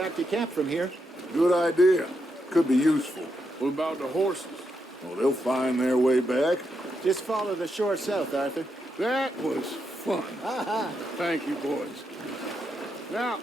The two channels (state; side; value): normal; both; correlation 0.82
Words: to camp from here. Good idea. Could be useful. What about the horses? Well, they'll find their way back. Just follow the shore south, Arthur. That was fun. Thank you, boys. Now,